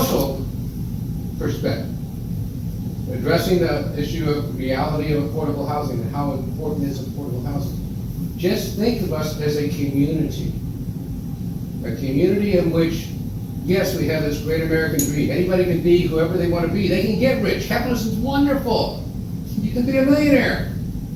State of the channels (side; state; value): both; identical; correlation 1.00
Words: perspective, addressing the issue of reality of affordable housing and how important is affordable housing, just think of us as a community in which, yes, we have this great American dream. Anybody can be whoever they want to be. They can get rich. Capitalism is wonderful. You can be a millionaire.